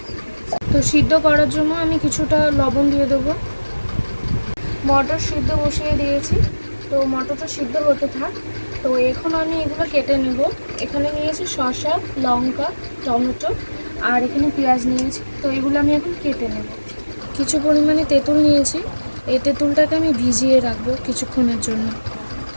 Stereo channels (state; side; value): inverted; both; correlation -1.00